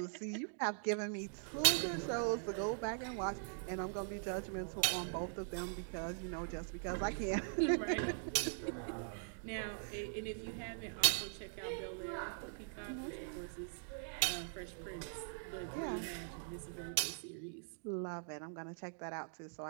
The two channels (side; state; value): left; silent; digital silence